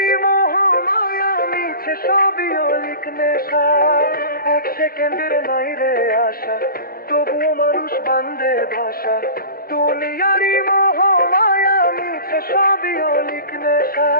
মোহ মায়া মিছে সবই অলিক নেশা 1 সেকেন্ডের নাই রে আশা তবুও মানুষ বান্ধের বাসা দুনিয়ারই মোহ মায়া মিছে সবই অলিক নেশা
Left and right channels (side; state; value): right; late; 0.43 ms